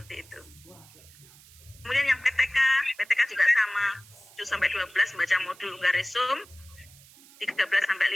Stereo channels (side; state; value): right; noise; hiss, 23 dB below the sound